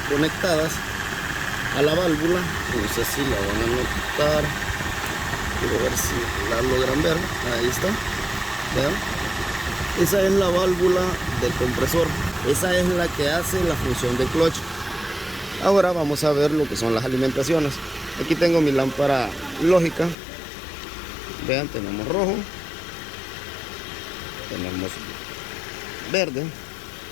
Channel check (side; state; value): right; drops out; at 20.2 s